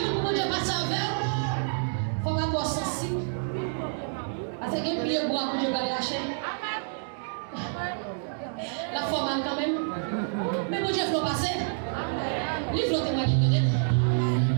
beaucoup de gens qui passent avec. Il faut avoir sensible. Parce que les pieds bois pour Dieu va lâcher. La forme quand même. Mais pour Dieu, il faut passer. Il faut témoigner de Dieu.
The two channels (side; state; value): left; silent; digital silence